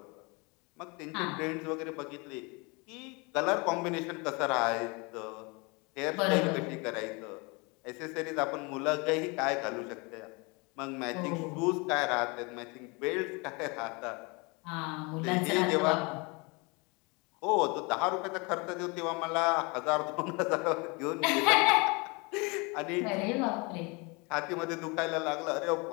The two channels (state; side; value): quieter; right; 28.8 dB